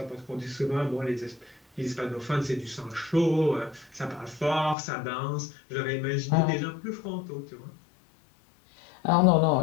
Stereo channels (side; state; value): right; drops out; at 4.8 s